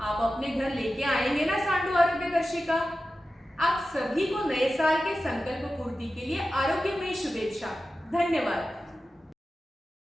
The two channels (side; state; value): both; normal; correlation 0.93